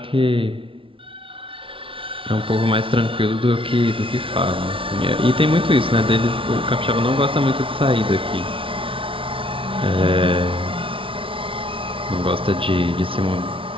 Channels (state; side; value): late; left; 0.25 ms